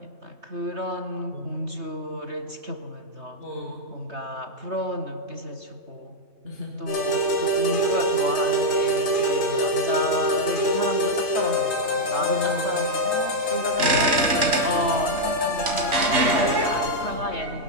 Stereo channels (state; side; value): late; left; 3.4 ms